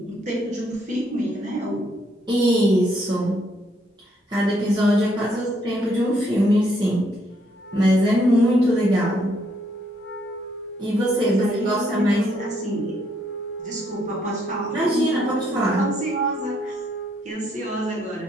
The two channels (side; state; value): both; normal; correlation 0.71